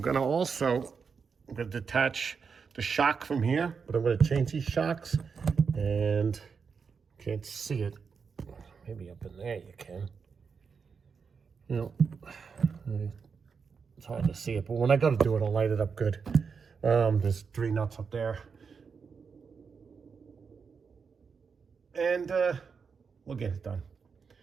gonna detach the shock from here, but I'm gonna change these shocks, and can't see it. Maybe up in there you can. You know, it's hard to see it, but when I go to do it, I'll light it up good. There's 3 nuts up there. And we'll get it done.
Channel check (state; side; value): quieter; left; 5.7 dB